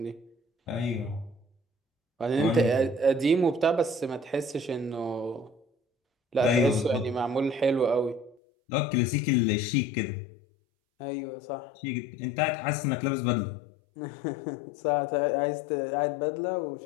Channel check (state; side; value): drops out; right; at 8.3 s